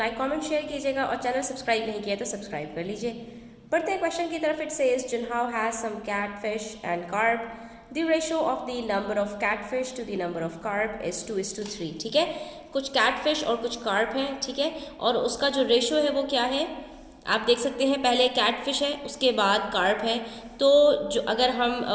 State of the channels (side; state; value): both; identical; correlation 1.00